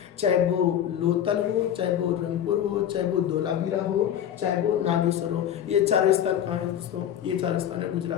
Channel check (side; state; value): right; quieter; 10.1 dB